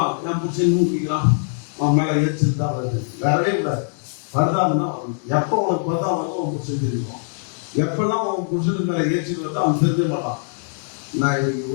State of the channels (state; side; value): silent; right; 64 dB below the other